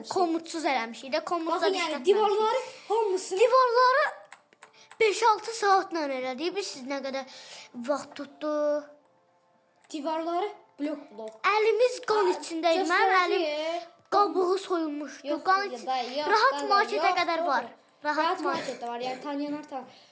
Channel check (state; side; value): identical; both; correlation 1.00